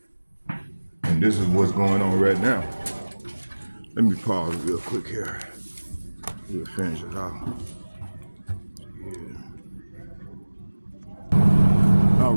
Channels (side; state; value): both; inverted; correlation -1.00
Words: And this is what's going on right now. Let me pause real quick here. We'll finish it off. Yeah. All